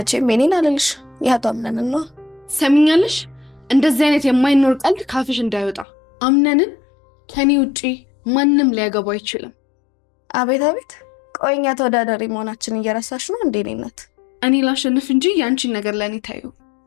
የኔን አልልሽ፣ ያቶ አምነንን ነው። ሰሚኛለሽ? እንደዚህ አይነት የማይኖር ቀልድ ካፍሽ እንዳይወጣ። አምነንን ከኔ ውጪ ማንም ሊያገባው አይችልም። አቤት አቤት! ቆይኛ ተወዳዳሪ መሆናችን እየረሳሽ ነው እንዴ? እኔነት እኔ ላሸንፍ እንጂ ያንቺን ነገር ለእኔ ታዩ።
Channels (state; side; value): drops out; right; at 5.9 s